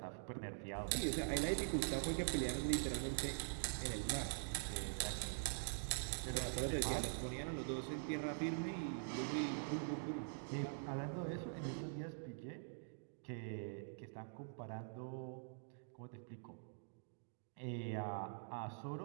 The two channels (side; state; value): left; silent; digital silence